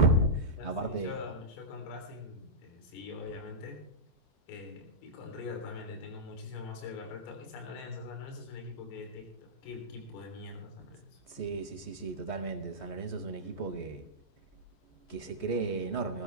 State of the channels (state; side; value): late; right; 14 ms